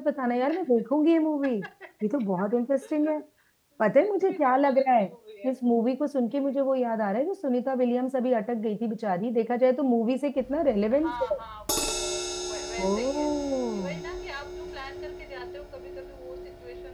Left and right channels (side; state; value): both; identical; correlation 1.00